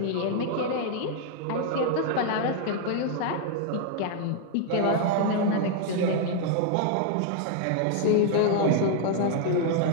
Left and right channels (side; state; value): both; different; correlation 0.00